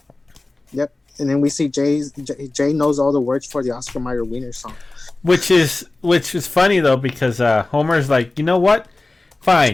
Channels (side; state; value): right; quieter; 3.0 dB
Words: Yep. And then we see Jay knows all the words for the Oscar Mayer Wiener song. Which is funny though because Homer's like, you know what?